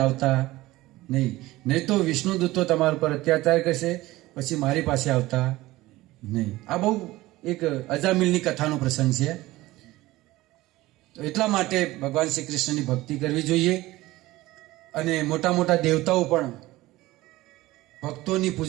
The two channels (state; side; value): quieter; left; 18.1 dB